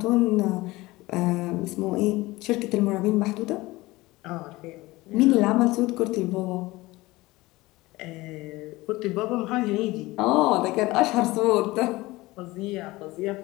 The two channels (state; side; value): quieter; right; 20.1 dB